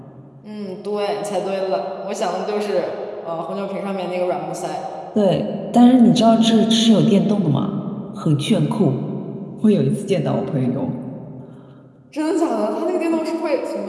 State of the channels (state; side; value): identical; both; correlation 1.00